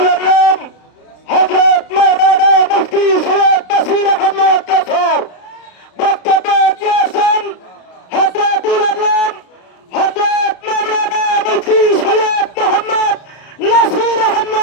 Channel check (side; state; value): right; late; 33 ms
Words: আল্লাহ হযরত মাওলানা মুফতি সৈয়দ নাসির আহমদ কাসর বক্তব্য দিয়েছেন। হযরতুল আল্লাহ হযরত মাওলানা মুফতি সৈয়দ মোহাম্মদ নাসির